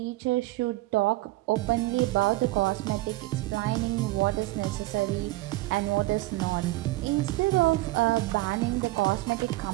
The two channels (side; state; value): left; quieter; 19.3 dB